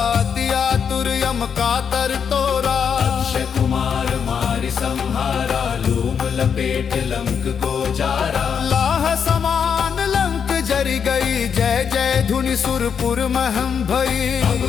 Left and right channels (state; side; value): quieter; right; 7.1 dB